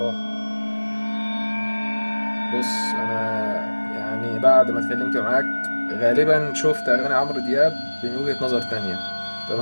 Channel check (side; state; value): both; inverted; correlation -1.00